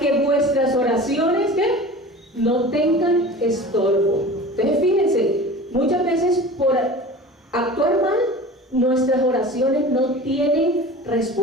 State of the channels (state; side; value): normal; both; correlation 0.37